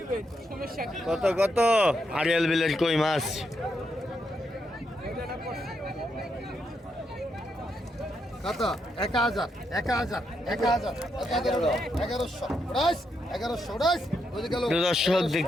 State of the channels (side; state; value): both; normal; correlation 0.80